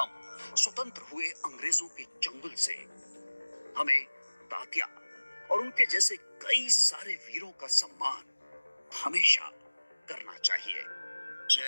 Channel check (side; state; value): both; inverted; correlation -1.00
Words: स्वतंत्र हुए अंग्रेजों के चंगुल से। हमें तात्या और उनके जैसे कई सारे वीरों का सम्मान हमेशा करना चाहिए।